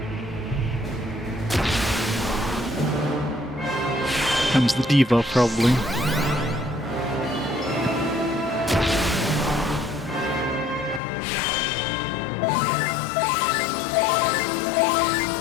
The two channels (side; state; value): right; drops out; at 11.0 s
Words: Comes the diva, probably.